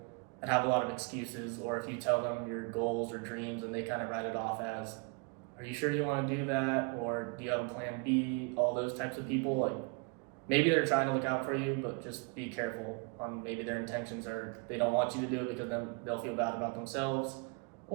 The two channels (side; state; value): left; quieter; 34.6 dB